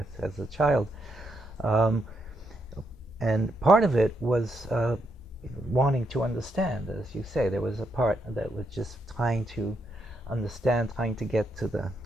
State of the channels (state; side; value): normal; both; correlation 0.79